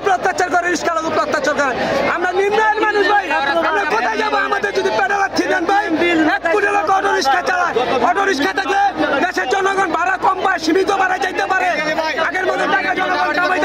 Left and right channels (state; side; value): noise; left; hum, 27 dB below the sound